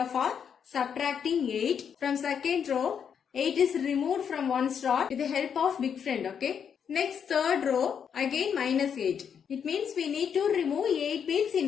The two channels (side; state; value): right; quieter; 7.5 dB